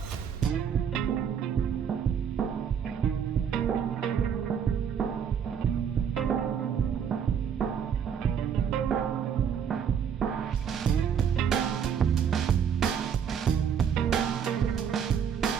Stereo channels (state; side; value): quieter; left; 7.8 dB